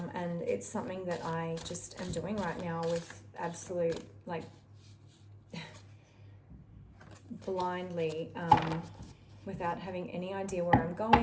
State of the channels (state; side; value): identical; both; correlation 1.00